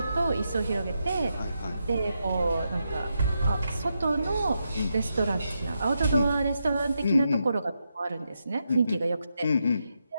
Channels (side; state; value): both; inverted; correlation -0.84